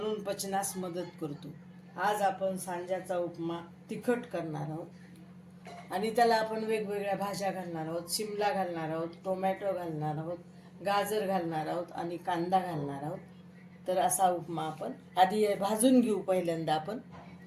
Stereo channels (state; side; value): identical; both; correlation 1.00